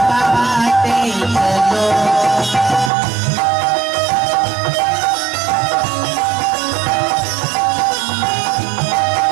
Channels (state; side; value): drops out; left; at 2.9 s